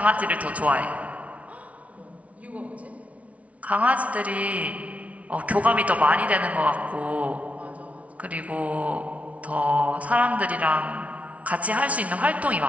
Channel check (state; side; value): late; left; 0.066 ms